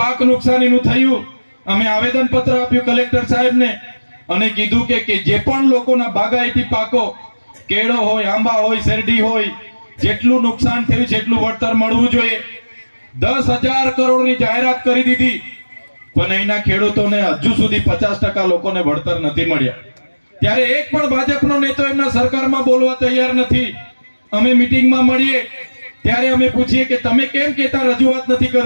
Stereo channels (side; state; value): both; inverted; correlation -1.00